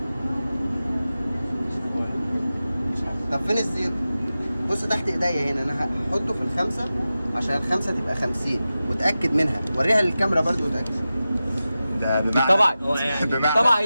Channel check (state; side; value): inverted; both; correlation -0.94